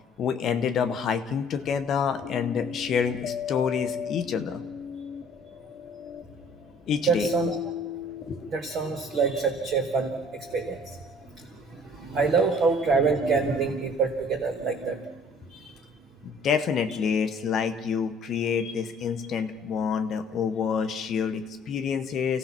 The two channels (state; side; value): normal; both; correlation 0.55